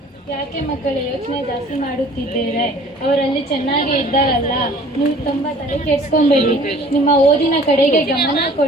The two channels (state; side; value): normal; both; correlation 0.51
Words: ಯಾಕೆ ಮಕ್ಕಳೇ ಯೋಚನೆ ಜಾಸ್ತಿ ಮಾಡುತ್ತಿದ್ದೇವೆ? ಅವರಲ್ಲಿ ಚೆನ್ನಾಗೇ ಇದ್ದಾರಲ್ಲ, ನೀವು ತುಂಬ ತಲೆ ಕೆಡ್ಸ್ಕೊಂಬೇಡಿ. ನಿಮ್ಮ ಓದಿನ ಕಡೆಗೆ ಗಮನ